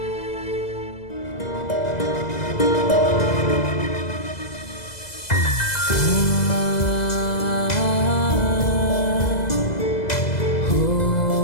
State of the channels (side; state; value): right; late; 2.0 ms